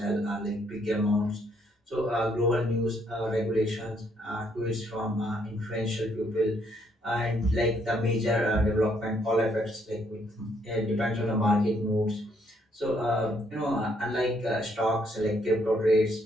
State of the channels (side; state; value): both; normal; correlation 0.70